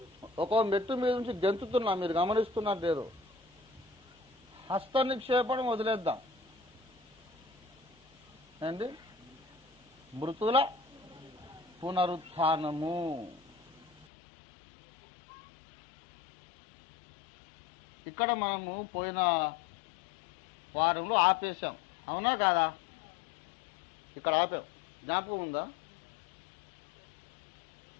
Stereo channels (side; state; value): right; drops out; at 14.1 s